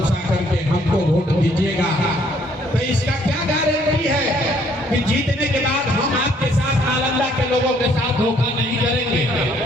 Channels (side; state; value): both; normal; correlation 0.64